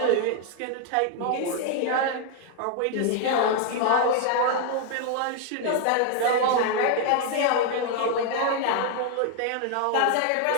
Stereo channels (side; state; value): both; different; correlation 0.00